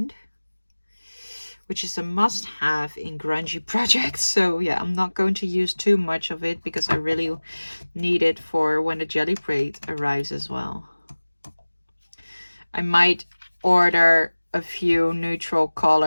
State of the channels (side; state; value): both; inverted; correlation -1.00